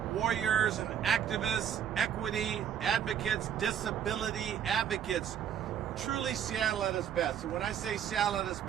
warriors and activists, equity advocates, disability advocates, truly Seattle at its best. And when I say Seattle at its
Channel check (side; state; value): left; quieter; 9.1 dB